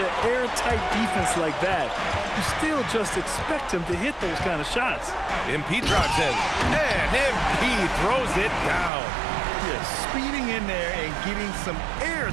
airtight defense like that, you still just expect him to hit those kind of shots. MP drives in. And MP throws it down. Yeah, speeding in there and getting some air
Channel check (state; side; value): drops out; left; at 8.9 s